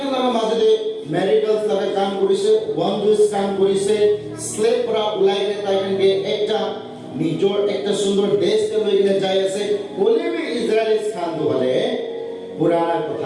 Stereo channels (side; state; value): both; identical; correlation 1.00